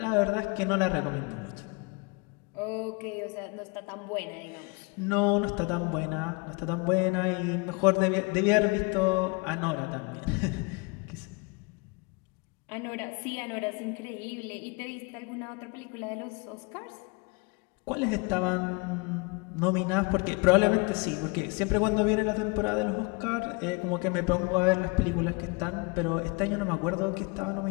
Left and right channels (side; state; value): right; quieter; 29.6 dB